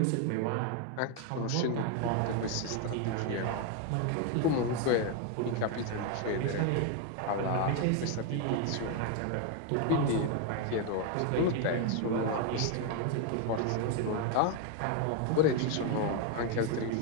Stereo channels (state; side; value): different; both; correlation 0.01